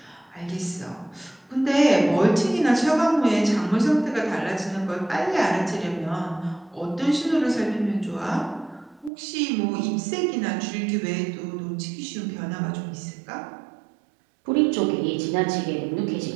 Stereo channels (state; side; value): drops out; left; at 9.1 s